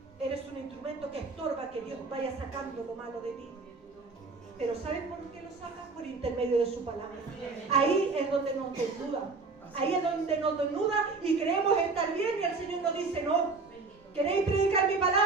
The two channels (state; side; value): quieter; left; 4.1 dB